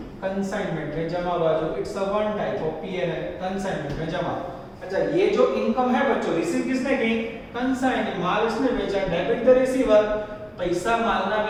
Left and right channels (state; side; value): identical; both; correlation 1.00